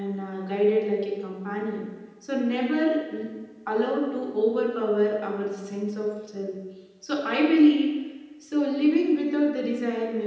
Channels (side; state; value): both; identical; correlation 1.00